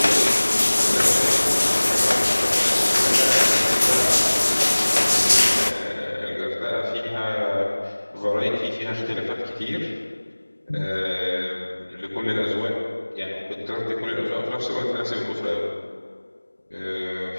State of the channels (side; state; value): both; inverted; correlation -1.00